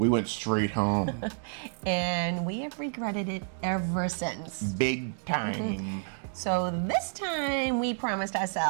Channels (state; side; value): silent; left; 58 dB below the other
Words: went straight home. And we have regretted it ever since. Big time. So this time we promised